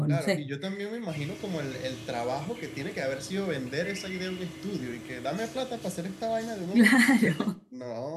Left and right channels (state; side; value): identical; both; correlation 1.00